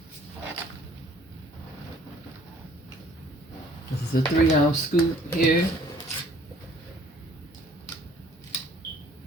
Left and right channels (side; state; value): both; normal; correlation 0.56